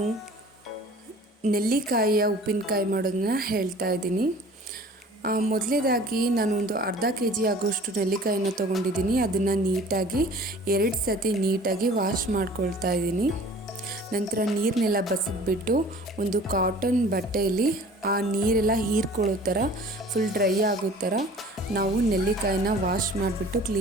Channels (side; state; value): both; normal; correlation 0.47